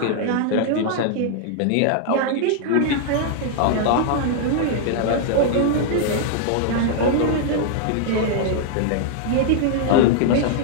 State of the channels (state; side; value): different; both; correlation -0.01